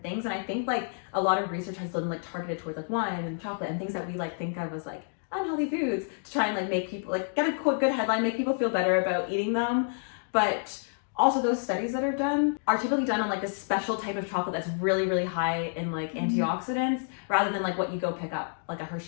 things, and I think like a lot of research has been like targeted towards like wine and chocolate and things that we like think of as like unhealthy foods to try and like make people like get a good headline, make people feel better about eating them. But also those studies that are done are typically done on like this special type of chocolate that's really, really high in like antioxidants rather than like what you go pick up like a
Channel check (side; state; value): right; silent; digital silence